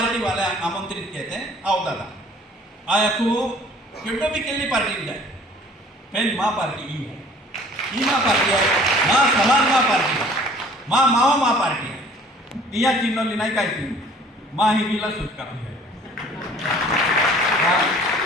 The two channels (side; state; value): both; normal; correlation 0.52